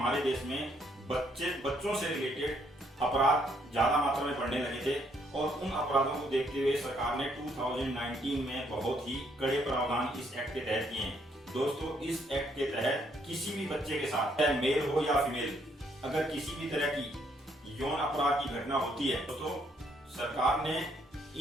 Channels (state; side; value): normal; both; correlation 0.70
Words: देश में बच्चों से रिलेटेड अपराध ज्यादा मात्रा में बढ़ने लगे थे और उन अपराधों को देखते हुए सरकार ने 2019 में बहुत ही कड़े प्रावधान इस एक्ट के तहत किए हैं। दोस्तों, इस एक्ट के तहत किसी भी बच्चे के साथ, चाहे मेल हो या फीमेल, अगर किसी भी तरह की यौन अपराध की घटना होती है तो सरकार ने